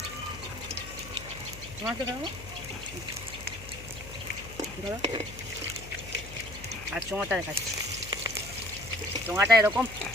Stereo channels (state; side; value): noise; left; hum, 14 dB below the sound